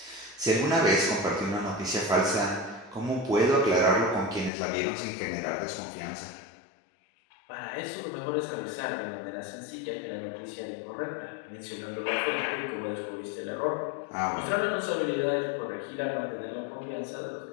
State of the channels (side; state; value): right; drops out; at 4.5 s